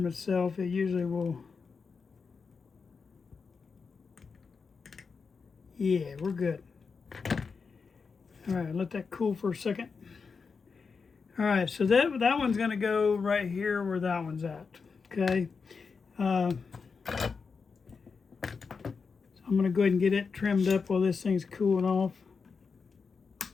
itself, it usually will. Yeah, we're good. All right, let that cool for a second. All right, so that one's going to go right here where that one's at. Okay. So I'm going to go ahead and get it trimmed up while this thing's cooling off.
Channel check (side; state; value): right; quieter; 5.2 dB